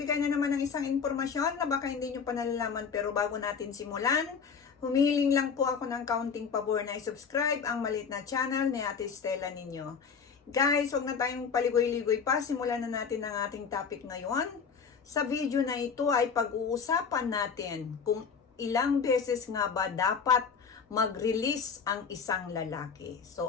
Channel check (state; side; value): quieter; right; 6.0 dB